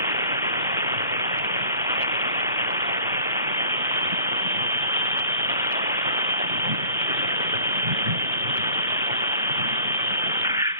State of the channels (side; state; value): both; inverted; correlation -0.46